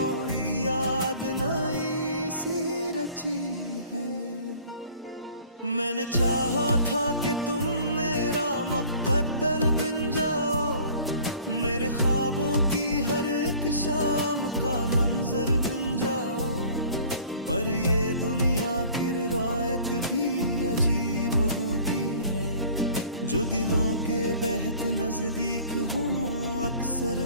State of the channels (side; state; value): both; inverted; correlation -0.50